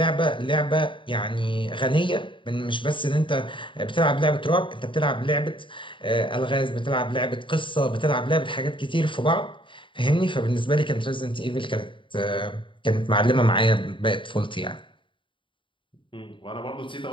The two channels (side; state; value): right; late; 0.24 ms